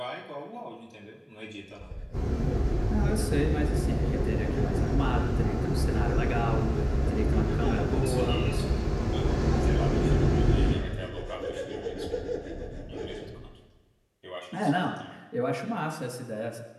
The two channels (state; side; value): identical; both; correlation 1.00